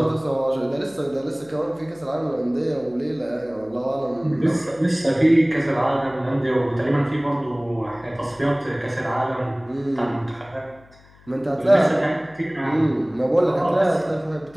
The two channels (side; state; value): left; noise; hum, 27 dB below the sound